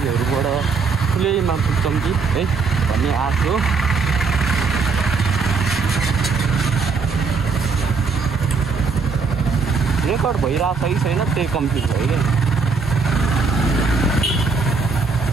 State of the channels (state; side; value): quieter; left; 4.8 dB